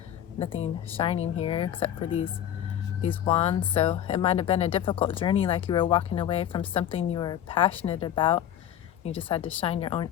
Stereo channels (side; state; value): right; quieter; 10.7 dB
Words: nothing shining here except for these wands. So it might have been a difficult journey, like you were walking away from something you were passionate about. You just had to shine your own